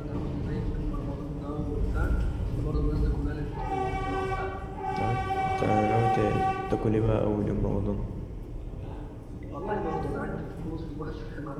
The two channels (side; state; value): both; identical; correlation 1.00